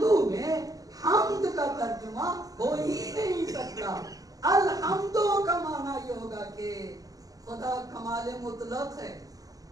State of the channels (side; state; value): left; late; 0.17 ms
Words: میں حمد کا ترجمہ ہو ہی نہیں سکتا. الحمدو کا معنی یہ ہوگا کہ خدا کمال مطلق ہے,